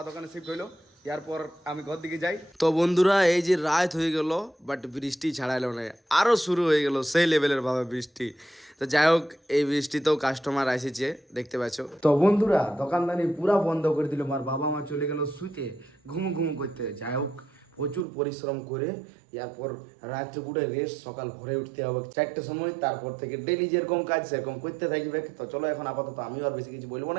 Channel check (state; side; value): drops out; left; at 18.1 s